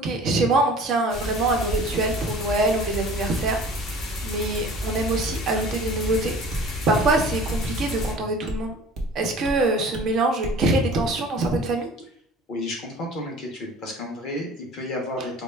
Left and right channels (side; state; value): both; normal; correlation 0.45